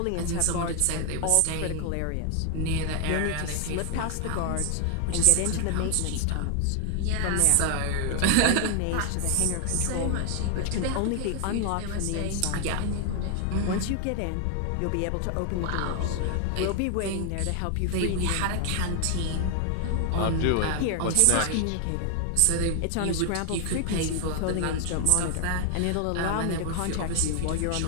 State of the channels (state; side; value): different; both; correlation 0.00